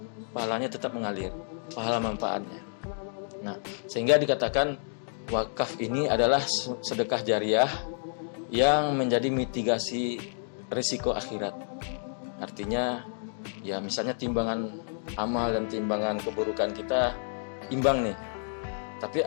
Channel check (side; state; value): right; silent; digital silence